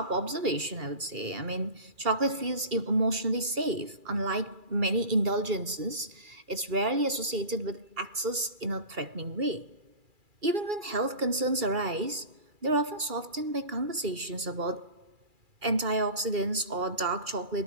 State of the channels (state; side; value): late; left; 2.4 ms